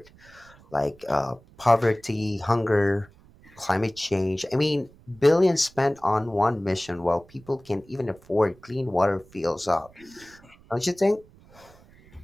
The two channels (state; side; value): noise; right; rumble, 26 dB below the sound